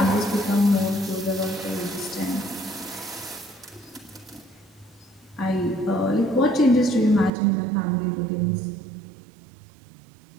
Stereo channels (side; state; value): left; drops out; at 7.3 s